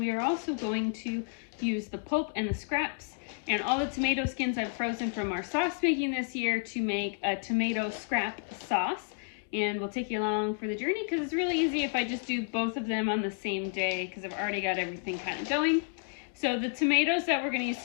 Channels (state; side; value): quieter; right; 39.8 dB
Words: are also going to use the pulp and the scraps and all the tomato skins I've frozen from our sauce making this year to make a tomato scrap sauce. And we'll take you along for the journey because it's really easy if I just do both of them on the same day because I've already got everything kind of going. So the tomatoes that we're going to use